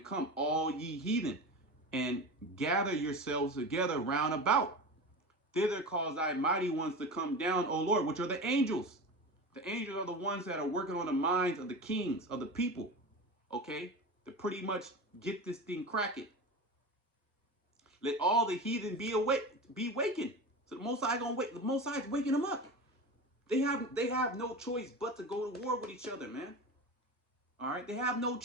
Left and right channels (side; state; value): both; normal; correlation 0.28